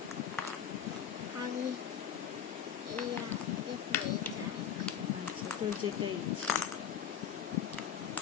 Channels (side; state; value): right; quieter; 8.5 dB